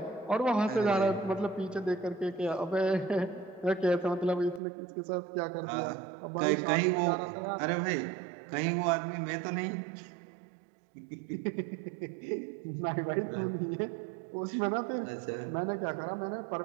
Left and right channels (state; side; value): drops out; left; at 4.6 s